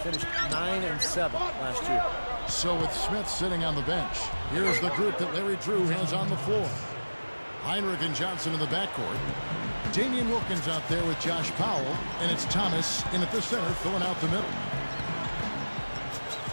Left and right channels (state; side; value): inverted; both; correlation -1.00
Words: 9-7 last year. So with Smith sitting on the bench, here's the group that Larry Drew has on the floor. Heinrich and Johnson in the backcourt. Damian Wilkins out there with Josh Powell, and it's Thomas in at the center filling out the middle.